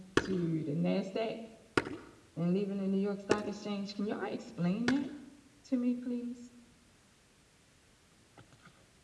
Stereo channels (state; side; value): identical; both; correlation 1.00